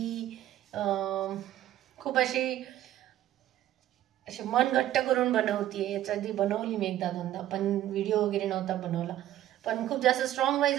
खूप अशी मन घट्ट करून बनवतीये. याच्या आधी बनवली मी एकदा दोनदा, पण व्हिडिओ वगैरे नव्हता बनवला. पण खूप जास्त स्ट्रॉंग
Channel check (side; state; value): left; quieter; 13.1 dB